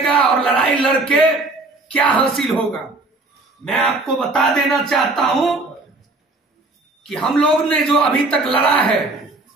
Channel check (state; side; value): quieter; left; 3.1 dB